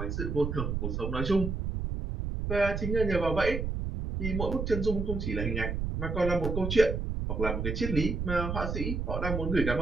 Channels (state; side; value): noise; right; rumble, 2 dB below the sound